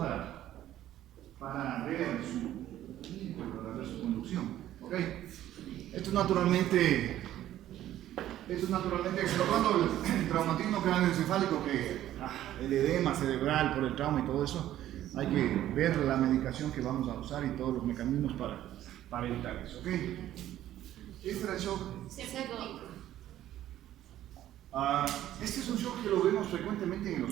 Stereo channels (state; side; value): quieter; left; 12.8 dB